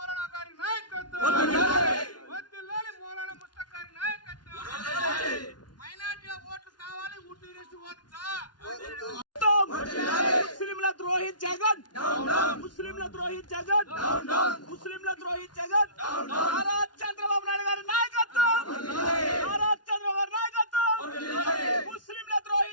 ద్రోహి జగన్ ముస్లింల ద్రోహి జగన్ ముస్లింల ద్రోహి జగన్ నారా చంద్రబాబు నాయుడు గారి నాయకత్వం నారా చంద్రబాబు గారి నాయకత్వం ముస్లింల ద్రోహి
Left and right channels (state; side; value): late; right; 0.70 ms